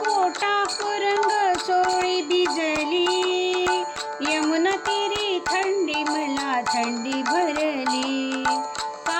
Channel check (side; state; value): both; identical; correlation 1.00